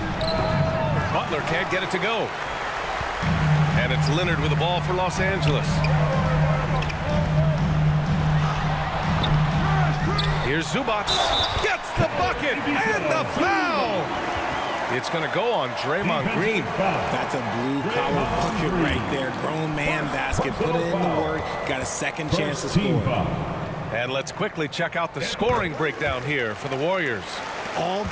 Butler can't get it to go. And it's Leonard with the ball for Los Angeles. Here's Zubac. Gets the bucket and the foul. It's going to go on Draymond Green. That's a blue-collar bucket right there. Grown man basket. Put it in the work. Got a second chance to score. And let's quickly check out the scoring breakdown here for the Warriors. All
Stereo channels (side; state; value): both; identical; correlation 1.00